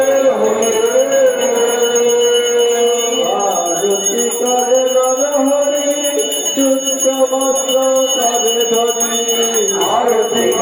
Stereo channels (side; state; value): both; identical; correlation 1.00